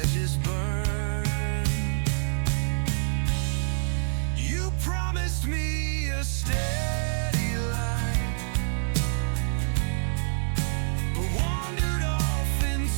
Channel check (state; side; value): silent; left; 56 dB below the other